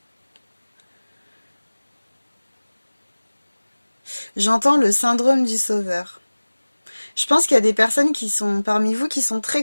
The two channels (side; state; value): both; inverted; correlation -1.00